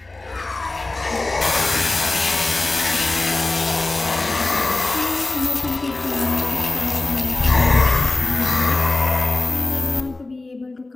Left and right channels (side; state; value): right; quieter; 3.2 dB